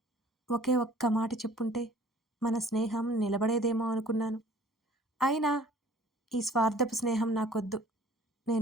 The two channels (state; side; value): normal; both; correlation 0.52